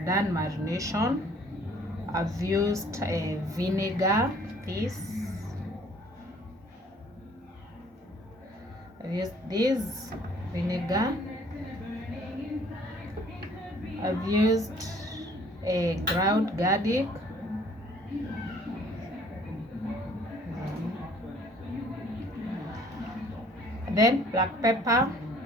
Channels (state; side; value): normal; both; correlation 0.57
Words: done marination. I've used vinegar. I've used this vinegar. I've used a ground garlic, then black pepper